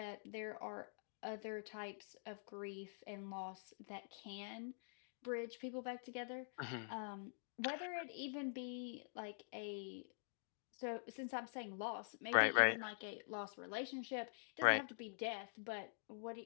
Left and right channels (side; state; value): right; silent; digital silence